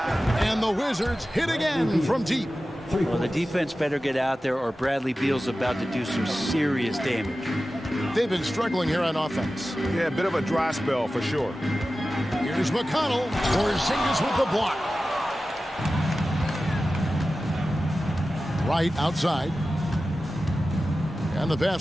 And the Wizards hit again from deep. Well, the defense better get out there or Bradley Beal's about to do some serious damage. They've been struggling here on offense. Yeah, a bit of a dry spell for sure. Here's McConnell. Porzingis with the block. Right outside. And the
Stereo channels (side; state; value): both; normal; correlation 0.94